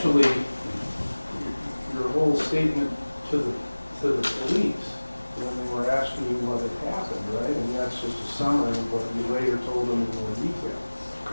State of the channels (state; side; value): inverted; both; correlation -1.00